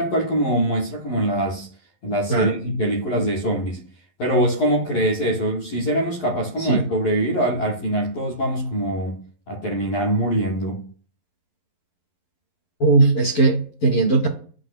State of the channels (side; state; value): right; late; 11 ms